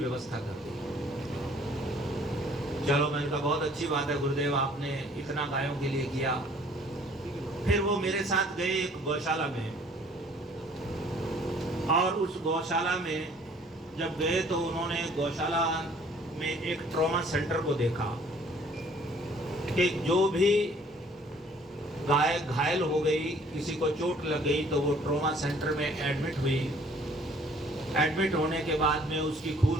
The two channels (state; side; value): normal; both; correlation 0.57